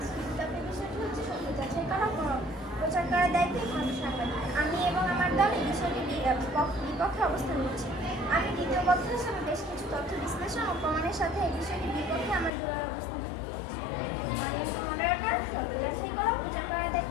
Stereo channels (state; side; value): drops out; right; at 12.5 s